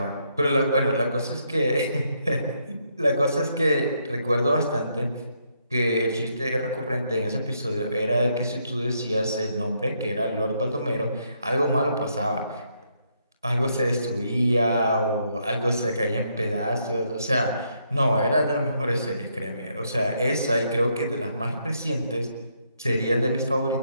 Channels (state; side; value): inverted; both; correlation -0.75